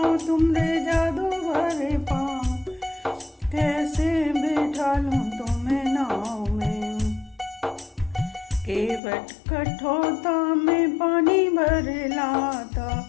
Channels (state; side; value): drops out; right; at 9.0 s